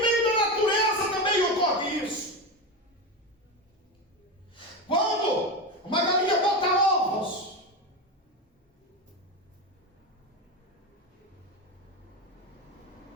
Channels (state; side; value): normal; both; correlation 0.18